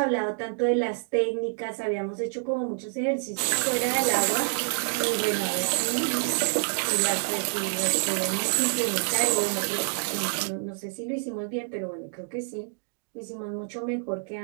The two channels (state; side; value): silent; left; 60 dB below the other